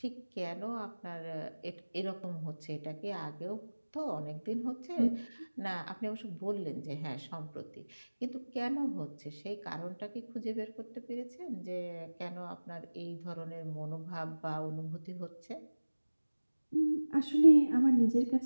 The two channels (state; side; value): inverted; both; correlation -1.00